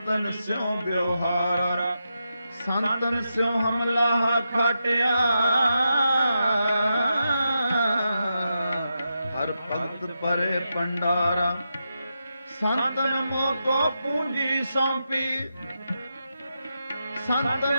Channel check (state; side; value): inverted; both; correlation -0.87